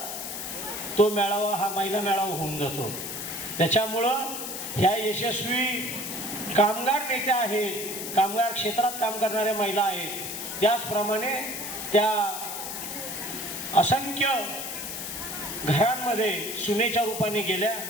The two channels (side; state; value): left; noise; hiss, 6 dB below the sound